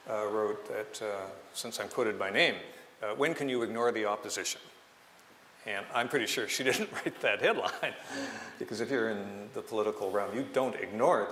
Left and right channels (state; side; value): identical; both; correlation 1.00